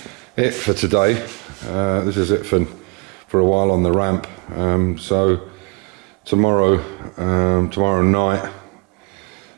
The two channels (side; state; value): left; quieter; 33.5 dB